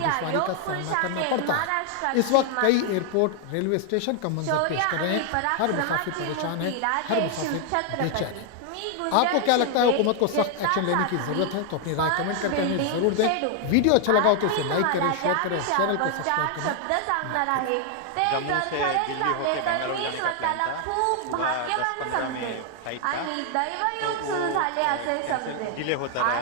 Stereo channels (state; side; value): different; both; correlation 0.00